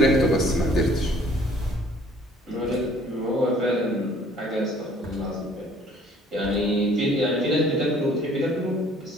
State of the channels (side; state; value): both; normal; correlation 0.57